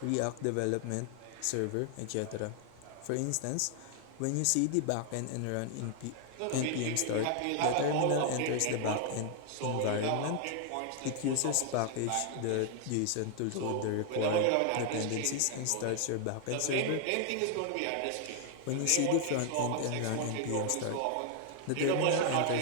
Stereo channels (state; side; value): different; both; correlation 0.00